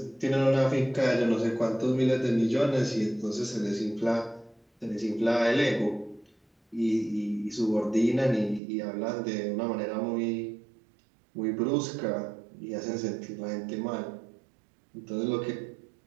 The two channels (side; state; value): left; drops out; at 8.6 s